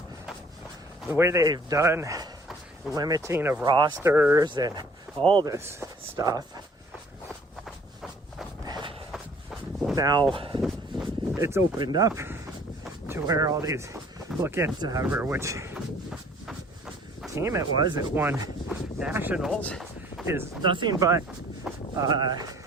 the way they've done limiting of rosters and all this stuff, now it's opened up to where all these, look at which team it was that won nationals, is nothing but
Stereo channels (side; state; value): both; normal; correlation 0.55